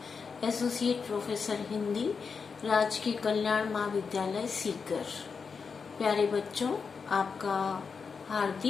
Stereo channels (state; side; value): quieter; right; 5.5 dB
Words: associate professor Hindi, राजकीय कल्याण महाविद्यालय सीकर। प्यारे बच्चों, आपका